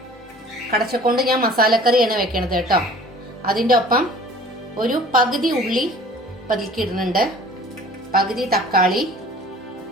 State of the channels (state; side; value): normal; both; correlation 0.48